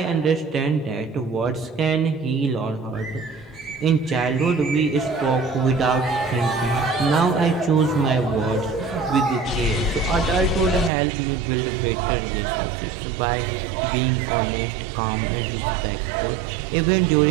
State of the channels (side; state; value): left; drops out; at 10.9 s